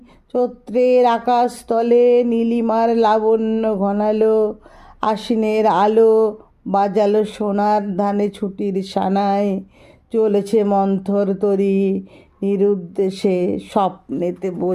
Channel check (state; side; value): identical; both; correlation 1.00